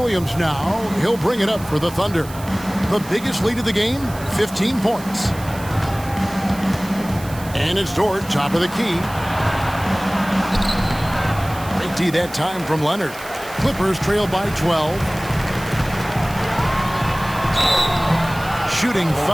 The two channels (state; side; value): noise; right; hiss, 17 dB below the sound